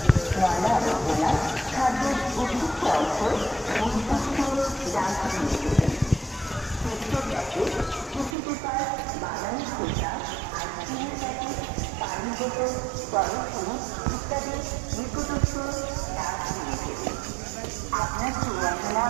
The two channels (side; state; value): left; drops out; at 8.3 s